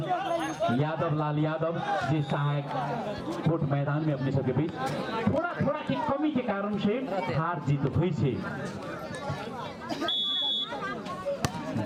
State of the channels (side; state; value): both; identical; correlation 1.00